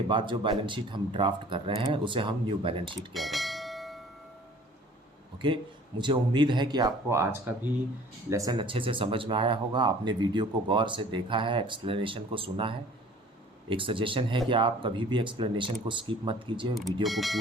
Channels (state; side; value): normal; both; correlation 0.50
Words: बाद जो बैलेंस शीट हम ड्राफ्ट कर रहे हैं उसे हम न्यू बैलेंस शीट कह रहे हैं। ओके, मुझे उम्मीद है कि आपको आज का भी लेसन अच्छे से समझ में आया होगा। आपने वीडियो को गौर से देखा है, एक्सप्लेनेशन को सुना है। एक सजेशन है कि आप कभी भी एक्सप्लेनेशन को स्किप मत कीजिए, वीडियो को